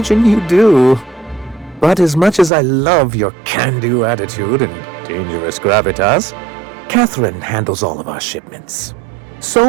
you do. But as much as I love your can-do attitude and dangerous gravitas, Catherine handles all of our shipments.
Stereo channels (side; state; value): left; drops out; at 2.5 s